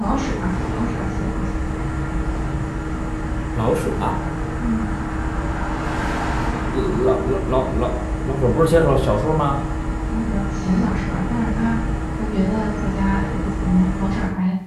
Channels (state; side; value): identical; both; correlation 1.00